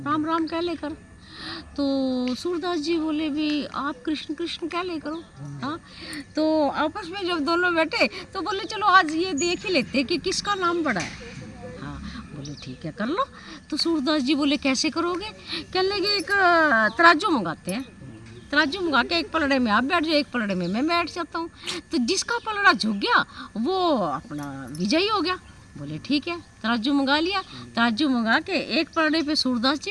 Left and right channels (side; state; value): both; identical; correlation 1.00